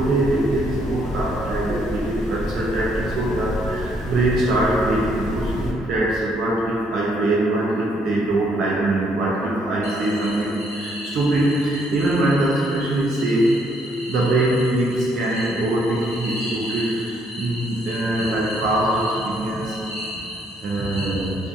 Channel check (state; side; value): normal; both; correlation 0.70